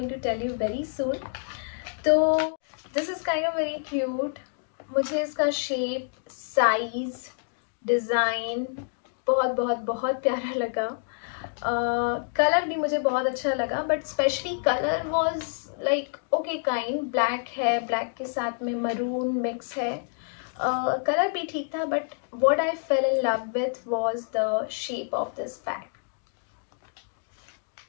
to tell you very soon. So this is kind of very cute. मुझे इसका शेप, साइज, डिज़ाइन बहुत बहुत बहुत प्यारा लगा। कलर भी मुझे बहुत अच्छा लगा, but specially colour was like okay kind. Black है, ब्लैक के साथ में मरून मिक्स है। कलर भी ठीक था, but what I fell in love with was the shape of this bag.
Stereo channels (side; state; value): right; silent; digital silence